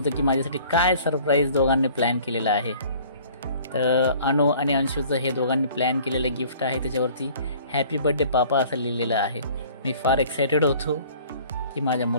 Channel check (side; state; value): both; inverted; correlation -0.51